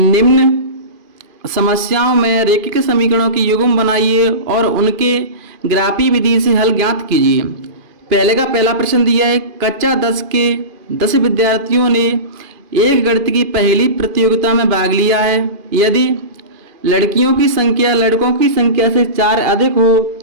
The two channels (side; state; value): left; late; 2.5 ms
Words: समस्याओं में रेखिक समीकरणों की युग्म बनाइए और उनके ग्राफी विधि से हल ज्ञात कीजिए। पहले का पहला प्रश्न दिया है, कक्षा 10 के 10 विद्यार्थियों ने एक गणित की पहली प्रतियोगिता में भाग लिया है। यदि लड़कियों की संख्या लड़कों की संख्या से 4 अधिक हो